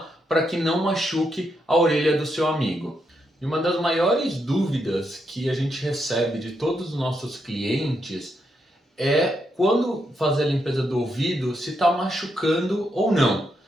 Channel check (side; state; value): both; normal; correlation 0.81